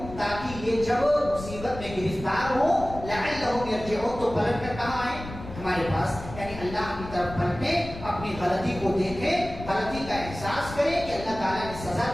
تاکہ یہ جب مصیبت میں گرفتار ہو, لعلہم یرجعون, تو پلٹ کر کہاں آئیں, ہمارے پاس, یعنی اللہ کی طرف پلٹیں, اپنی غلطی کو دیکھیں, غلطی کا احساس کریں کہ اللہ تعالیٰ نے سزا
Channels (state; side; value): noise; left; rumble, 12 dB below the sound